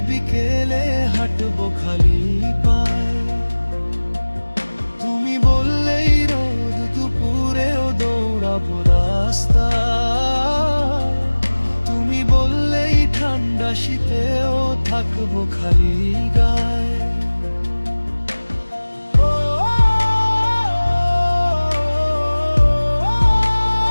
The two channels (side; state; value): both; inverted; correlation -1.00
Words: বিকেলে হাঁটবো খালি পায়ে, তুমি বললেই রোদ দুপুরেও দৌড়াবো রাস্তায়, তুমি বললেই ঠান্ডা শীতেও থাকবো খালি গায়ে।